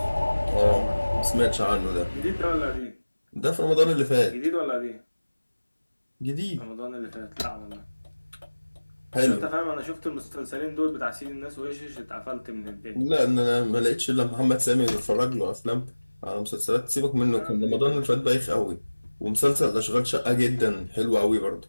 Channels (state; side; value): inverted; both; correlation -1.00